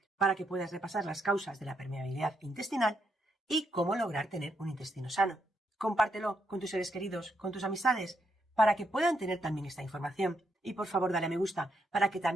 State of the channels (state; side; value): normal; both; correlation 0.78